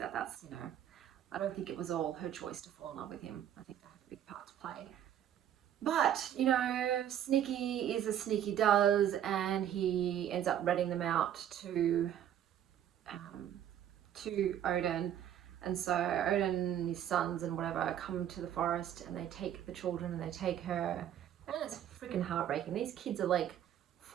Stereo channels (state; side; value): quieter; left; 10.4 dB